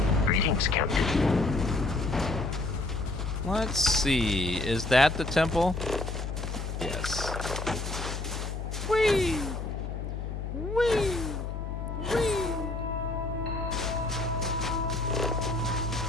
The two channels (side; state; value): left; noise; hum, 5 dB below the sound